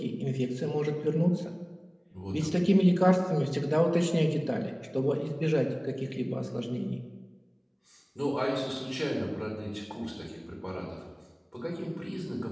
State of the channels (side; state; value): both; identical; correlation 1.00